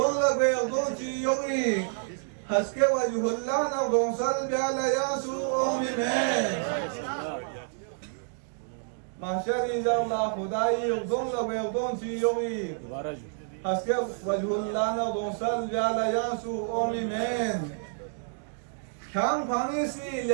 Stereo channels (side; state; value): left; silent; digital silence